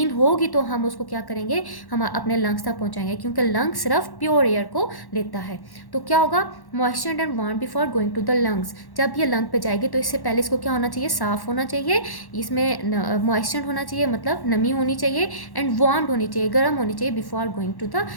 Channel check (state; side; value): late; right; 1.1 ms